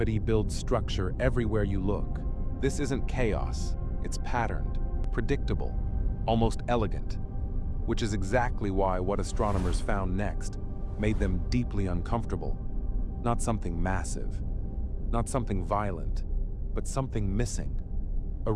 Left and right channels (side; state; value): both; identical; correlation 1.00